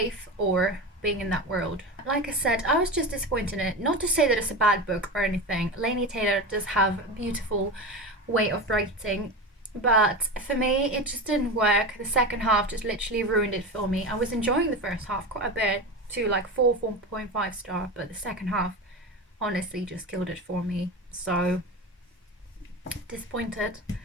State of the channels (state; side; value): normal; both; correlation 0.24